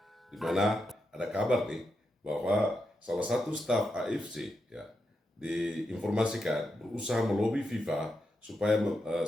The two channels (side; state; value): both; normal; correlation 0.86